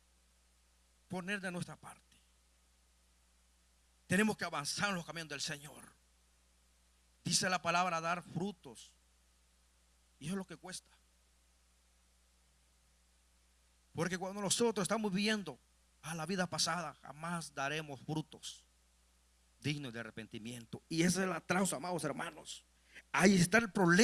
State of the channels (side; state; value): both; identical; correlation 1.00